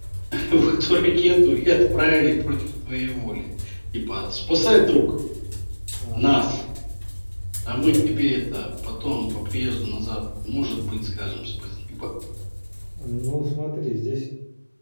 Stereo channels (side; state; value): both; inverted; correlation -1.00